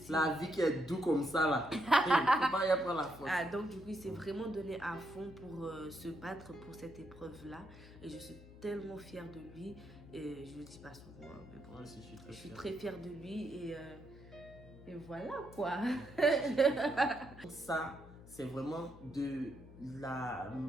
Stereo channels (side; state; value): left; noise; hum, 18 dB below the sound